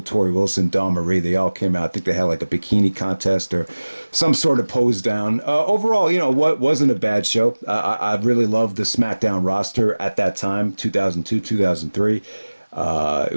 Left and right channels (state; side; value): inverted; both; correlation -1.00